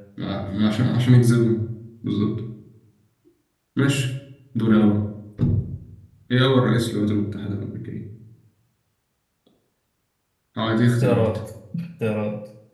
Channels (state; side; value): identical; both; correlation 1.00